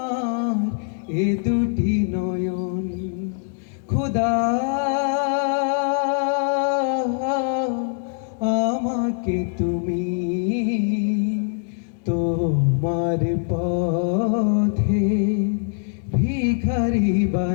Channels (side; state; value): right; silent; 61 dB below the other